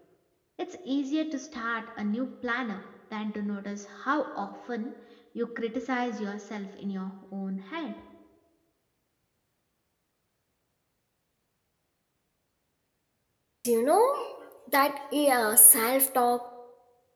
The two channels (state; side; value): identical; both; correlation 1.00